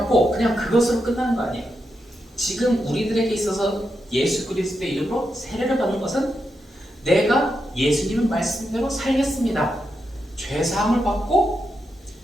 그냥 그것으로 끝나는 거 아니에요. 지금 우리들에게 있어서 예수 그리스도의 이름으로 세례를 받는 것은 내가 예수님의 말씀대로 살겠습니다. 죄사함을 받고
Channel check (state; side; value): normal; both; correlation 0.85